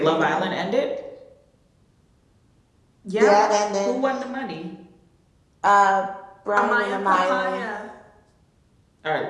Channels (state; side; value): identical; both; correlation 1.00